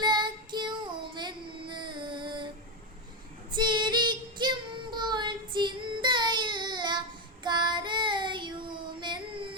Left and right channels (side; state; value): both; normal; correlation 0.09